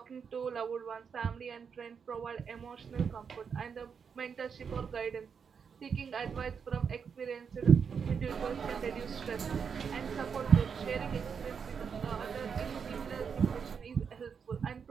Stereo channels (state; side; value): quieter; left; 6.5 dB